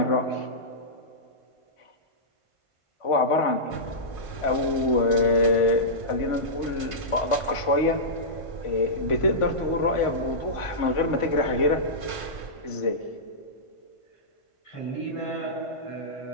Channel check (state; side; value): late; right; 1.5 ms